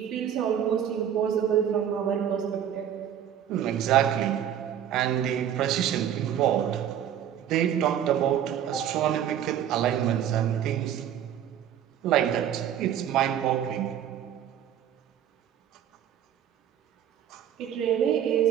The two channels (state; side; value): quieter; left; 9.8 dB